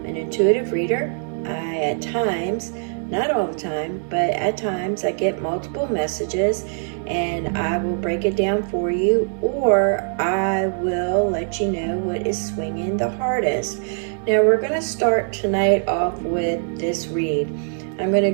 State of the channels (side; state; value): left; silent; digital silence